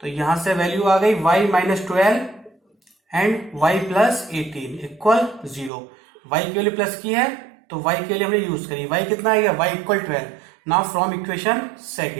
तो यहां से वैल्यू आ गई y minus 12 and y plus 18 equal 0। y की वैल्यू प्लस की है तो y के लिए हमने यूज करी, y कितना आएगा, y equal 12। Now from equation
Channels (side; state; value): left; drops out; at 5.7 s